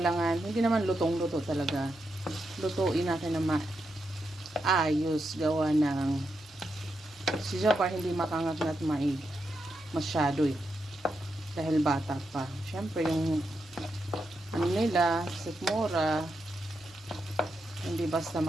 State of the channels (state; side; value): noise; left; hum, 30 dB below the sound